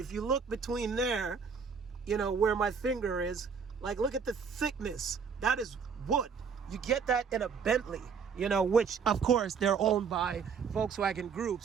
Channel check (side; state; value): left; quieter; 6.1 dB